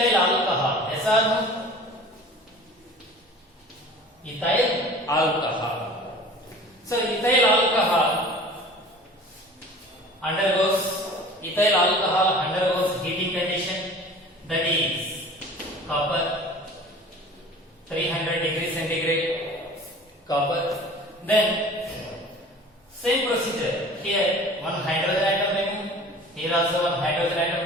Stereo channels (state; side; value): normal; both; correlation 0.43